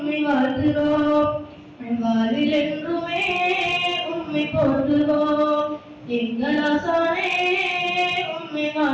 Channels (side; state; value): both; identical; correlation 1.00